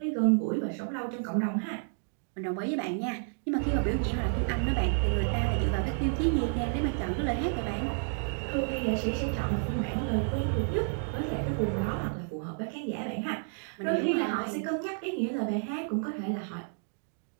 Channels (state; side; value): silent; left; 57 dB below the other